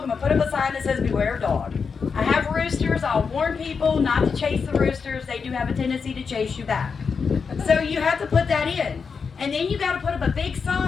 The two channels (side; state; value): right; quieter; 5.6 dB